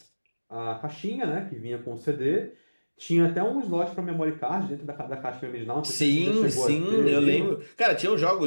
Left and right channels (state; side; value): inverted; both; correlation -1.00